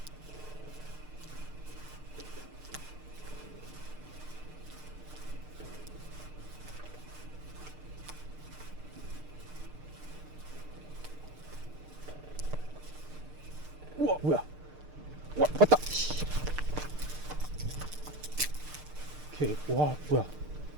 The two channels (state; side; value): late; left; 6.6 ms